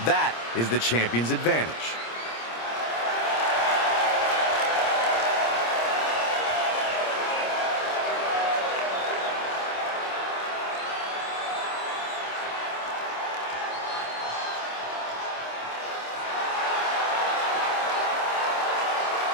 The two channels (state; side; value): late; right; 26 ms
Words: That is the champion's advantage.